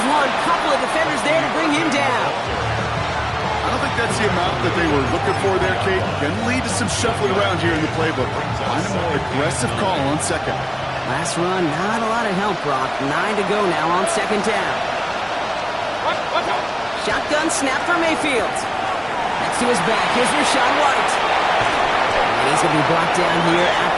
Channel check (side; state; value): both; identical; correlation 1.00